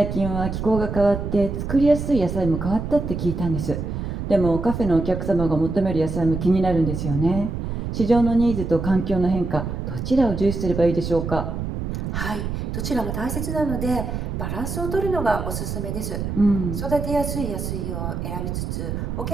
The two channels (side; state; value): right; noise; rumble, 4 dB below the sound